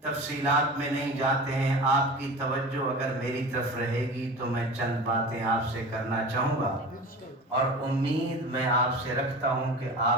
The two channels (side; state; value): both; normal; correlation 0.34